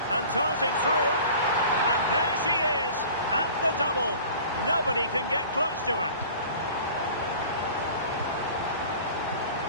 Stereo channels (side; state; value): both; inverted; correlation -0.43